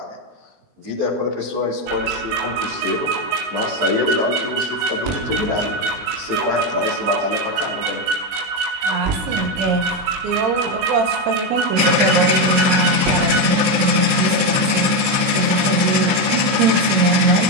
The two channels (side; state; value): left; late; 23 ms